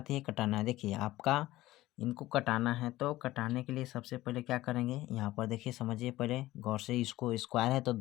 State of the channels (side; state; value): right; quieter; 16.6 dB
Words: हैं कटाना है। देखिए आपका इनको कटाना है, तो कटाने के लिए सबसे पहले क्या करेंगे, यहाँ पर देखिए समझिए पहले गौर से, इसको स्क्वायर है तो